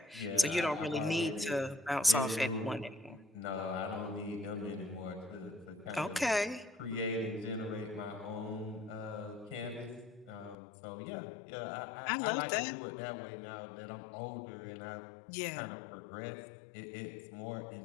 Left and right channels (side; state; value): right; drops out; at 10.6 s